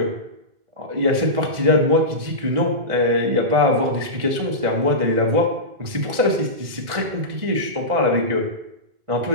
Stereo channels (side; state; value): left; late; 1.6 ms